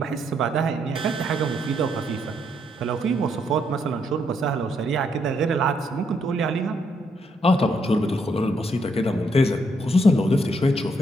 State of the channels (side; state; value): both; normal; correlation 0.75